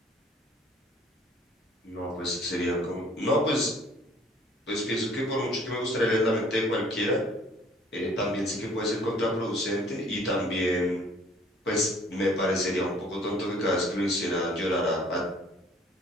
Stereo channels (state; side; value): normal; both; correlation 0.56